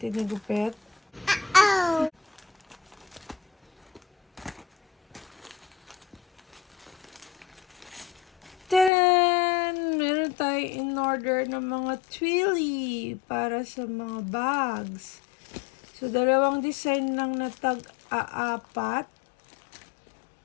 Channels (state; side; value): drops out; right; at 8.9 s